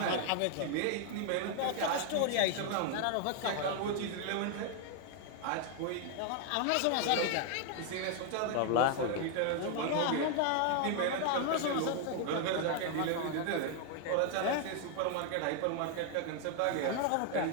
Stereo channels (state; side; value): different; both; correlation 0.00